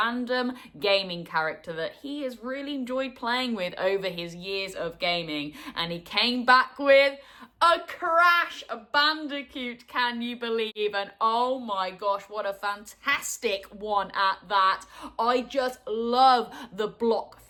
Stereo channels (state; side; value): identical; both; correlation 1.00